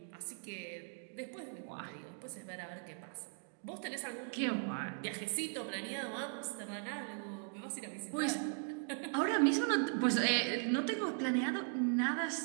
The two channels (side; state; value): left; silent; 52 dB below the other